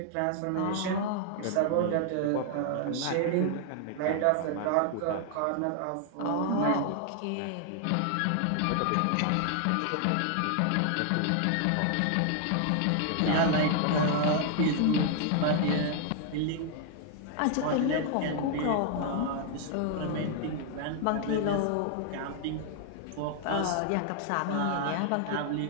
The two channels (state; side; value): different; both; correlation 0.00